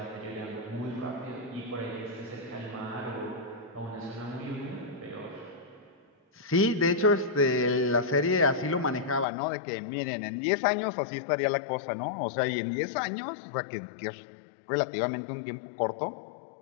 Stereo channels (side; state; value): right; drops out; at 9.2 s